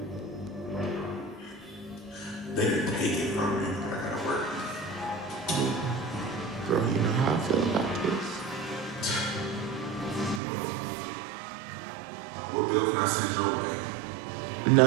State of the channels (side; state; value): left; drops out; at 10.4 s